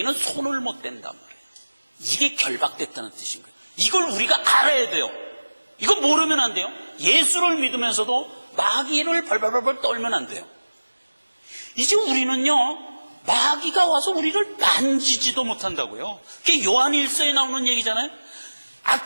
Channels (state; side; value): inverted; both; correlation -1.00